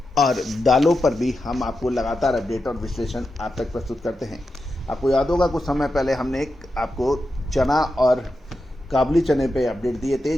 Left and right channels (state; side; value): normal; both; correlation 0.89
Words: और दालों पर भी हम आपको लगातार अपडेट और विश्लेषण आप तक प्रस्तुत करते हैं। आपको याद होगा कुछ समय पहले हमने आपको चना और काबुली चने पे अपडेट दिए थे